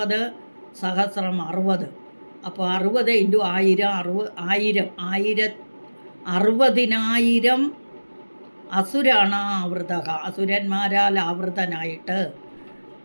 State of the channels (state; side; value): inverted; both; correlation -1.00